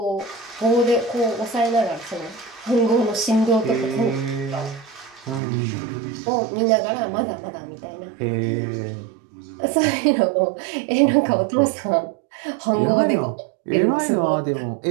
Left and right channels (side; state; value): left; drops out; at 5.4 s